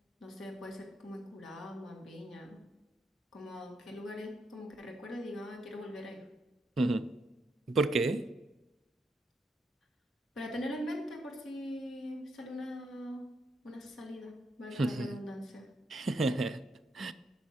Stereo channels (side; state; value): both; normal; correlation 0.79